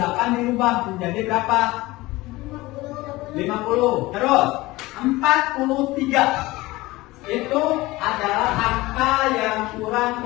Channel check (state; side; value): quieter; right; 19.9 dB